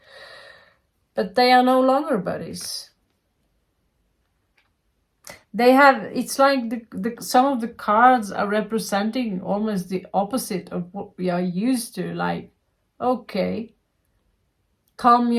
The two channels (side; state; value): both; identical; correlation 1.00